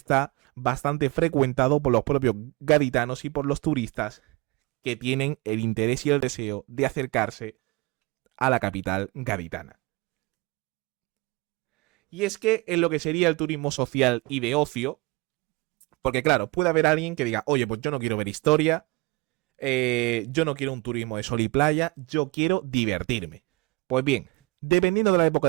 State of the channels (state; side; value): quieter; left; 25.2 dB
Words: bastante frecuentado por los propios gaditanos y por los turistas que tienen el interés y el deseo de acercarse a la capital gaditana. Y es que en lo que sería el turismo social y de ocio, porque claro, puede haber alguien que diga, oye, pues yo no quiero ver historia, yo no quiero un turismo de sol y playa, yo quiero divertirme. Pues bien, dependiendo de la época